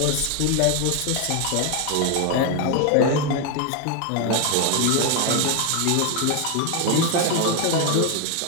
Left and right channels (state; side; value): different; both; correlation 0.01